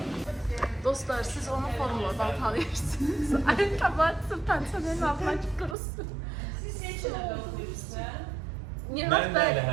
Dostlar, siz onu formuladan tanıyırsınız. Ayaqqabı pensiyonerin altına qırılsın. Mən də elə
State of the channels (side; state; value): left; drops out; at 5.8 s